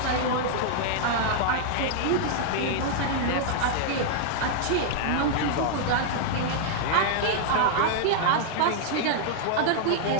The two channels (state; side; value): different; both; correlation -0.01